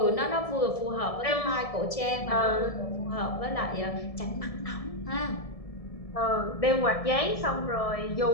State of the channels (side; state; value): right; late; 1.7 ms